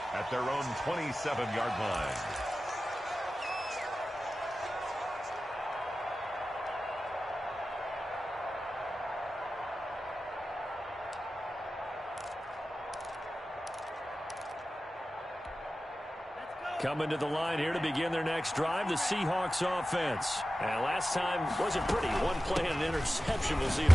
at their own 27-yard line. Coming to the line here to begin their next drive, the Seahawks offense. And last time wasn't pretty. One play and an interception. We'll see if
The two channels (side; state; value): both; normal; correlation 0.94